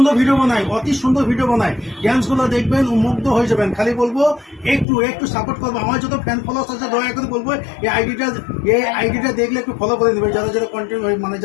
ভিডিও বানায়, অতি সুন্দর ভিডিও বানায়। ড্যান্সগুলো দেখবেন, মুগ্ধ হয়ে যাবেন। খালি বলবো একটু সাপোর্ট করবো। আমার যত ফ্যান ফলোয়ার্স আছে দয়া করে বলবো এই আইডিটা দেখলে একটু ফলো করে দেবে। যারা কন্টেন্ট মানে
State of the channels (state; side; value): drops out; right; at 4.9 s